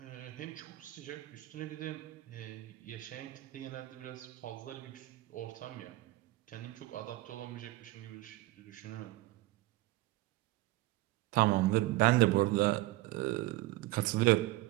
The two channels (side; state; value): left; quieter; 18.0 dB